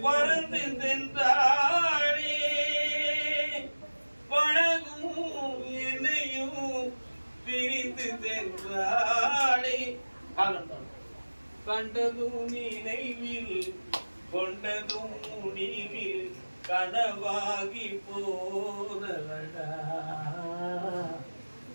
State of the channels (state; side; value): inverted; both; correlation -1.00